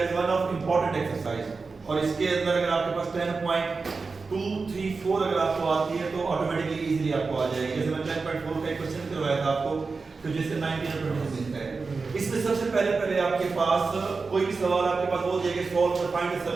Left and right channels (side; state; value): left; quieter; 4.4 dB